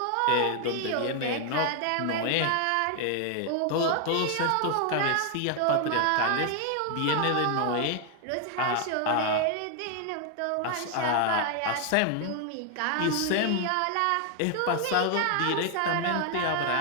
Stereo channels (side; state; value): both; different; correlation 0.00